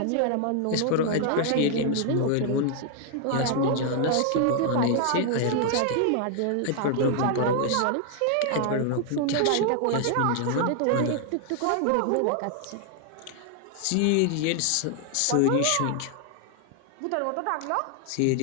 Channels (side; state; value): both; different; correlation 0.00